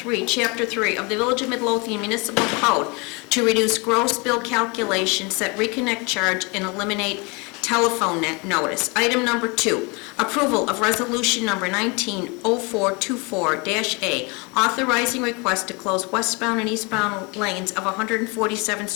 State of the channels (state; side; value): quieter; right; 29.0 dB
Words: Chapter 3 of the Village of Midlothian Municipal Code to reduce gross bill calculation, set reconnect charge, and eliminate telephone notice. Item number 2, approval of resolution number 190424-A, authorizing request to close westbound and eastbound lanes of 147th